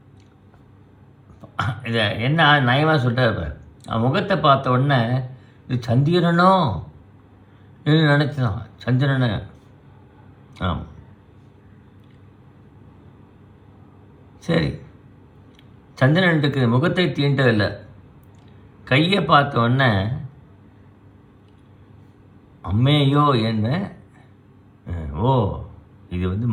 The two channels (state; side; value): identical; both; correlation 1.00